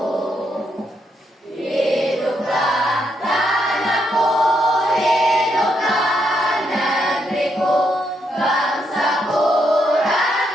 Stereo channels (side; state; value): both; normal; correlation 0.78